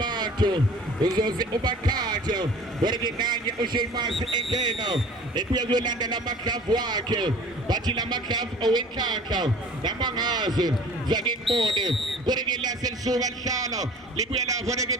uzoze ubakhathe kodwa-ke nanye uSheamus engena ebuye kuyolanda lamadlavu wakhe bathi lamadlavu owenhlanhla namangazi zake ngibone kodwa-ke lase lisuka lihlala libuye lapho-ke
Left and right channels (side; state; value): both; normal; correlation 0.45